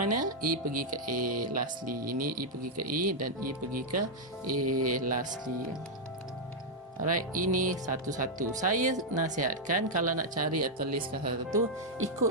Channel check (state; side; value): normal; both; correlation -0.03